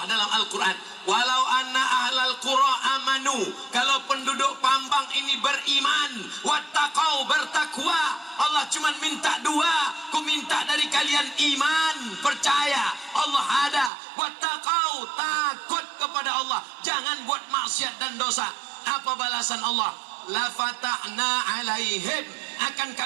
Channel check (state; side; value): drops out; left; at 13.9 s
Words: dalam Al-Quran, walau anna ahlal qura amanu, kalau penduduk Pambang ini beriman, wattaqau, bertakwa, Allah cuma minta 2, ku minta dari kalian iman, percaya Allah ada, wattaqau, takut kepada Allah, jangan buat maksiat dan dosa. Apa balasan Allah? La fatahna alaihim, akan